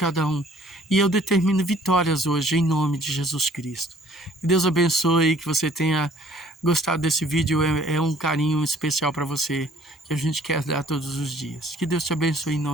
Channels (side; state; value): both; normal; correlation 0.57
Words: um, e eu determino vitórias hoje, em nome de Jesus Cristo. Que Deus abençoe, que você tenha gostado desse vídeo, é um carinho especial para você, que a gente quer dar todos os dias. Que Deus te abençoe em